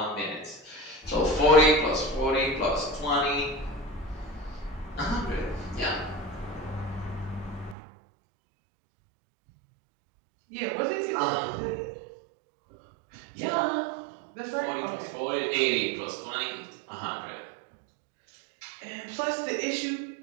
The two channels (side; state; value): left; drops out; at 7.8 s